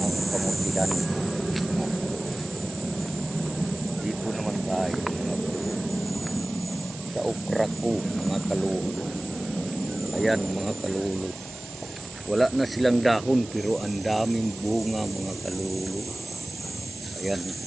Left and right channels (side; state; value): right; noise; hiss, 15 dB below the sound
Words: kamutihan. Dito naman tayo mga kalulu. Sa okra ko mga kalulu. Ayan mga kalulu. Wala na silang dahon pero ang daming bunga mga kalulu. Ayan